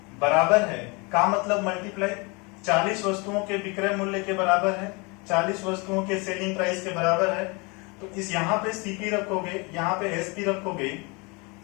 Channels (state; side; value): quieter; right; 29.0 dB